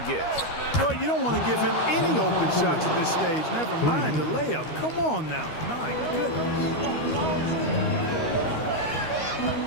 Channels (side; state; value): right; late; 13 ms